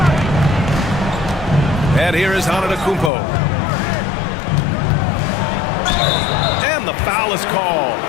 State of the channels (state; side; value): drops out; right; at 3.1 s